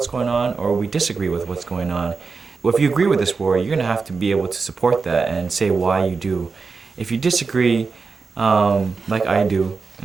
going on or we disagree with what's going on. Well, if you agree with this war, you're going to have to be able to support that and say why you do. If you disagree, like I do,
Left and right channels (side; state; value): left; quieter; 4.7 dB